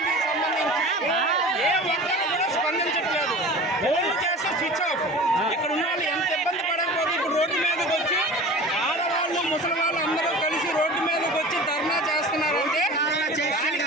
ఏ ఒక్కరు కూడా స్పందించట్లేదు. ఫోన్లు చేస్తే స్విచ్ ఆఫ్. ఇక్కడ ఉన్న వాళ్ళు ఎంత ఇబ్బంది పడకపోతే ఇప్పుడు రోడ్డు మీదకి వచ్చి ఆడవాళ్ళు ముసలి వాళ్ళు అందరూ కలిసి రోడ్డు మీదకి వచ్చి ధర్నా చేస్తున్నారంటే దానికి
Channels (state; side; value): normal; both; correlation 0.37